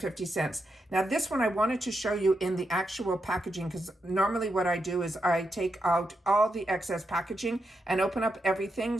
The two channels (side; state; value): both; normal; correlation 0.84